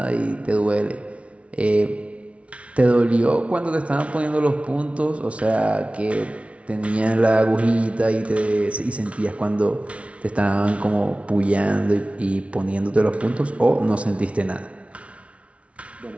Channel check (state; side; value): late; left; 0.063 ms